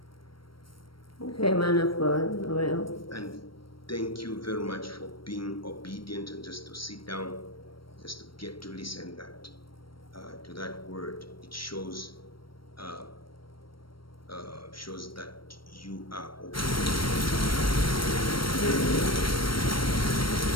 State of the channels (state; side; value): late; right; 0.74 ms